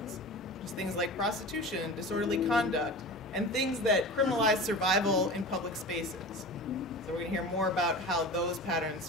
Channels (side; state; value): both; normal; correlation 0.33